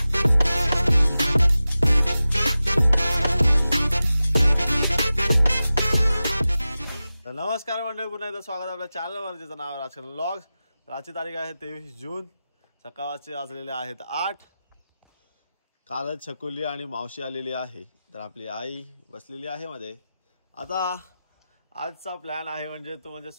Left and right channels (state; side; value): inverted; both; correlation -0.95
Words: मंडळी, पुन्हा एकदा स्वागत आहे आपल्या चॅनलवर, ज्याचं नाव आहे राजकरण व्लॉग्स. आजची तारीख आहे 23 जून. सकाळचे वाजलेले आहेत 8. कालच छकुली आणि मावशी आलेली आहे, तर आपली आई बसलेली आहे मध्ये. आता आजचा प्लॅन आहे म्हणजे